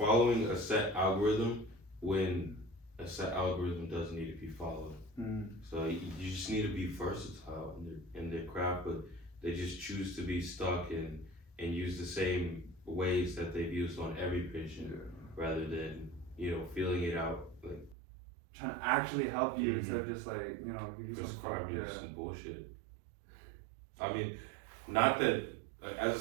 a set algorithm when a set algorithm doesn't need to be followed. So you just need to be versatile in their craft, but they just choose to be stuck and use the same ways that they've used on every patient, rather than feeling it out, like trying to actually help you instead of just like give you prescribing some bullshit. I mean, not that as a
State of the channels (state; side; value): drops out; left; at 17.9 s